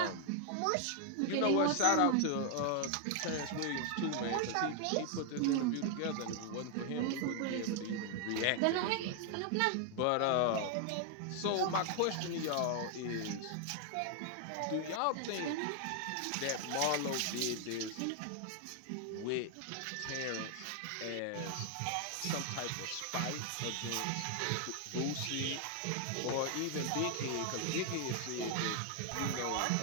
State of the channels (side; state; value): both; different; correlation 0.00